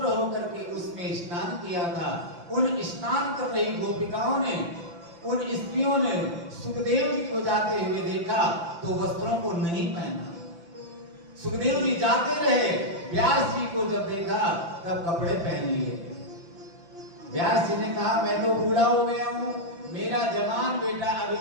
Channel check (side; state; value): left; late; 5.9 ms